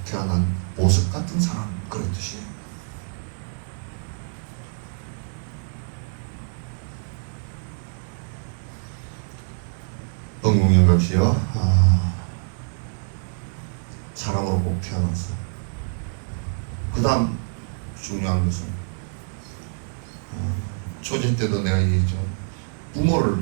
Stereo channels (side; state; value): left; silent; 61 dB below the other